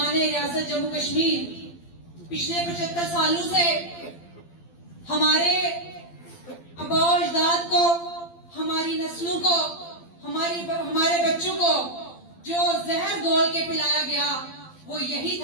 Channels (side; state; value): right; late; 12 ms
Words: ریاست جموں کشمیر، پچھلے 75 سالوں سے ہمارے آباء و اجداد کو، ہماری نسلوں کو، ہمارے بچوں کو جو زہر گھول کے پلایا گیا وہ یہی